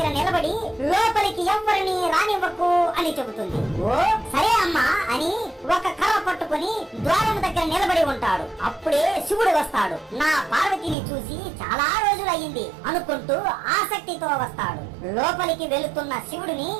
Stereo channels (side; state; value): left; drops out; at 11.0 s